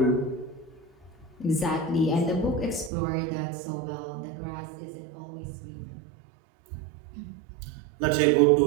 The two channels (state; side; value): drops out; left; at 2.9 s